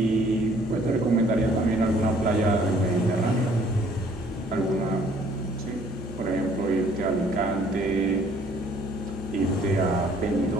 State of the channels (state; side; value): normal; both; correlation 0.59